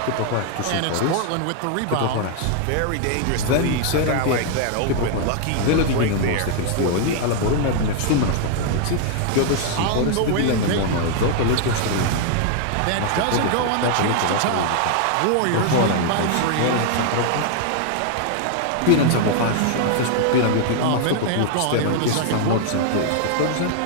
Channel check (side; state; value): both; different; correlation 0.00